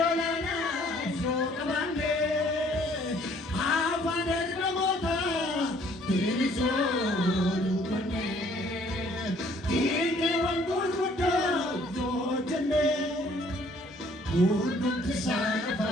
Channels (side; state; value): both; normal; correlation 0.60